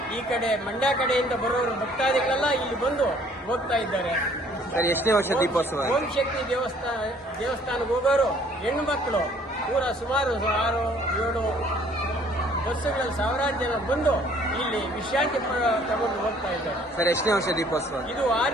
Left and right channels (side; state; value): both; normal; correlation 0.58